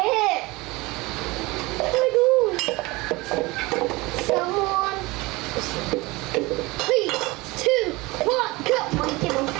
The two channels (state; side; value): quieter; left; 22.7 dB